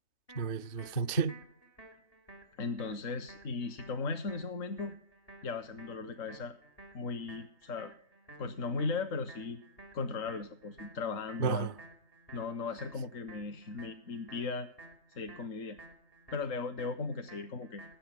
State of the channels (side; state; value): right; late; 3.2 ms